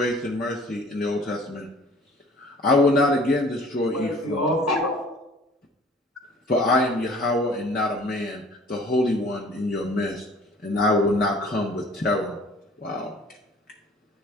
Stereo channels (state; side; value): normal; both; correlation 0.51